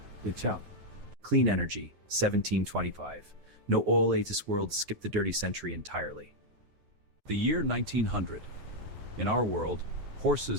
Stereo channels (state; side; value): late; left; 9.5 ms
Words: It's out. Clean energy, 1725. No oil ages world skip the dirty century entirely. The year 1900. In our world,